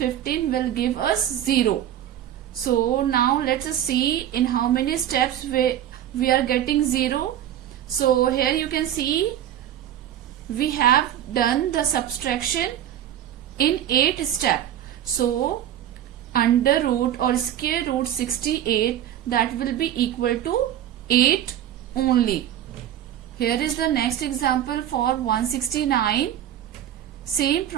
will give us 0. So now let us see in how many steps we are getting 0. So here you can see we have done the subtraction in 8 steps. So under root or square root 68, that will be equal to 8 only. Here is the next example for 169. Same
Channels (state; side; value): quieter; left; 11.1 dB